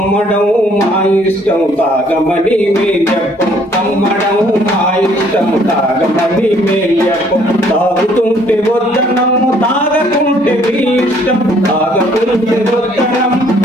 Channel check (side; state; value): both; normal; correlation 0.62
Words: మా ఇష్టం తాగమని మే చెప్పం, అమ్మడం మా ఇష్టం తాగమని మే చెప్పం, తాగుతుంటే వద్దనం తాగకుంటే మీ ఇష్టం, తాగకుంటే వద్దనం